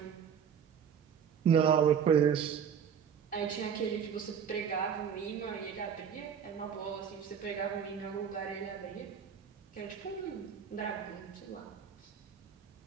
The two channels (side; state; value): left; quieter; 7.6 dB